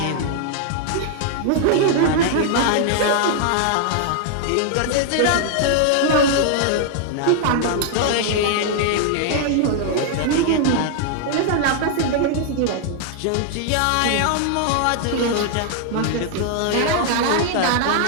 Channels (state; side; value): different; both; correlation 0.00